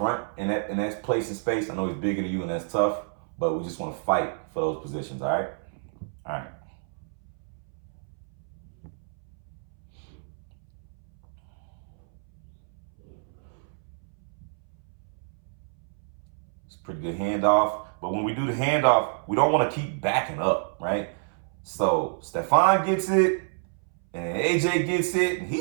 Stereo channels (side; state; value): left; silent; 59 dB below the other